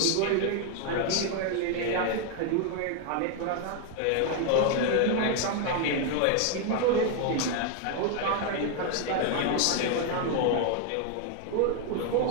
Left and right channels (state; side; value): different; both; correlation 0.01